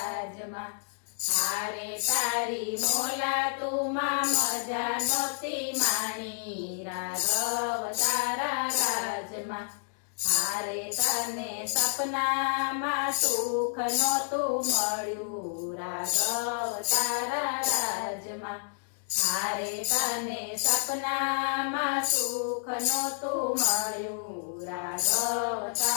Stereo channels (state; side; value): silent; right; digital silence